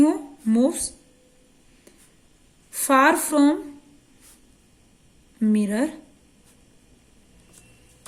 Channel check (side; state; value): both; identical; correlation 1.00